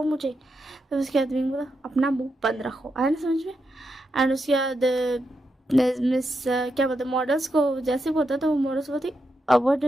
मुझे। तो उसके बाद विंग बोला अपना मुंह बंद रखो, आया ना समझ में। एंड उसके बाद मिस क्या बोलते मॉडल्स को जैसे बोलता तो वो मॉडल्स बोलती what do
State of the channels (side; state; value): both; normal; correlation 0.85